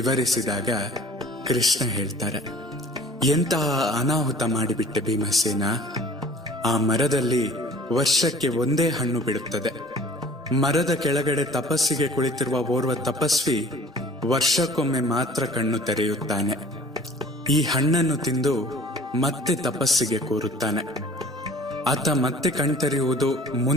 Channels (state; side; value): normal; both; correlation 0.49